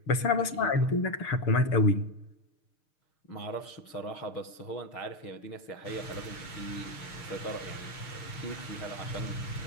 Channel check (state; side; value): late; right; 6.5 ms